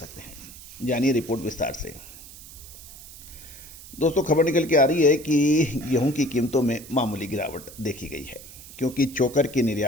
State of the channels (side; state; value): right; noise; hiss, 16 dB below the sound